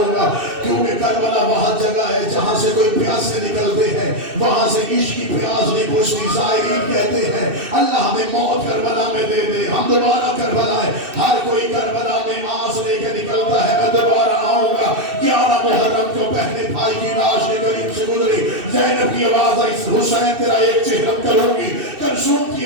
گا, کیونکہ کربلا وہاں جگہ ہے جہاں سے کوئی پیاسے نکلتے ہیں, وہاں سے عشق کی پیاس نہیں بجھتی. زائرین کہتے ہیں اللہ ہمیں موت کربلا میں دے دے, ہم دوبارہ کربلا ہے. ہر کوئی کربلا میں آس لے کے نکلتا ہے, میں دوبارہ آؤں گا. 11 محرم کو پہلے بھائی کی لاش کے قریب سے گزری, زینب کی آواز آئی, حسین تیرا ایک چہرہ کروں گی. کلثوم کی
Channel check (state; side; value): late; left; 2.6 ms